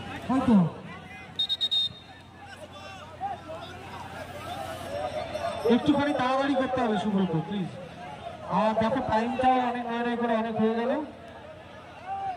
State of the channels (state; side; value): identical; both; correlation 1.00